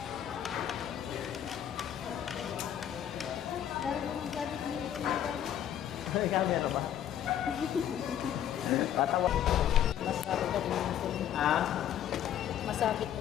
Dari mo nang gabi ni Ay, camera ba? Tatawa. Masakit ka din ito. Ah? Masakit ka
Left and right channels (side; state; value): right; quieter; 10.4 dB